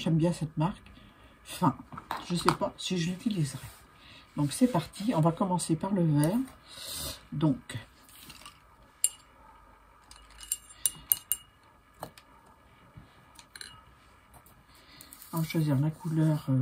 bien cette marque. Enfin, je sais pas si je l'utiliserai. Donc c'est parti, on va commencer par le vert. Donc on va choisir la couleur,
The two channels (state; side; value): identical; both; correlation 1.00